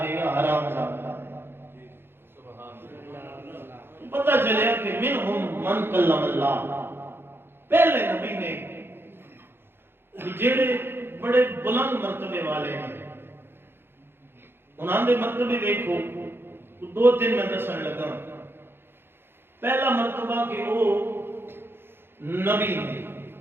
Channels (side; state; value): left; late; 0.11 ms